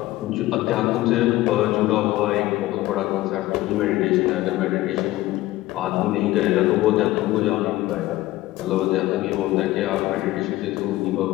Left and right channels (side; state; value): right; quieter; 17.0 dB